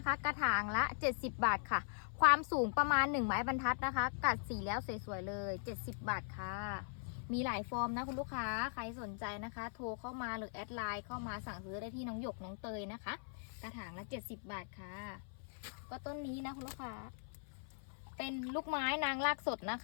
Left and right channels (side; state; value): right; silent; 51 dB below the other